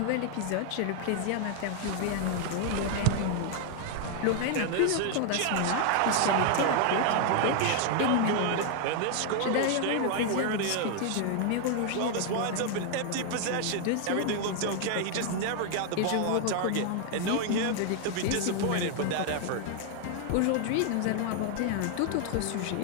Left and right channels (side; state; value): both; different; correlation 0.00